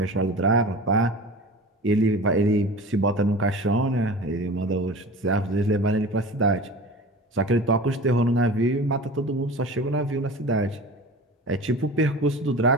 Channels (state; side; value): normal; both; correlation 0.36